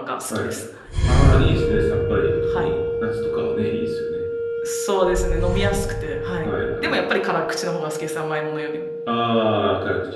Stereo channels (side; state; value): both; identical; correlation 1.00